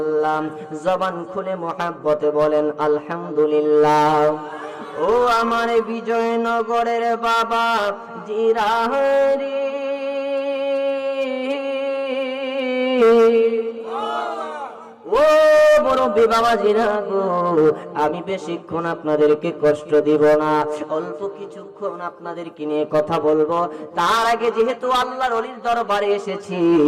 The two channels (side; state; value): both; identical; correlation 1.00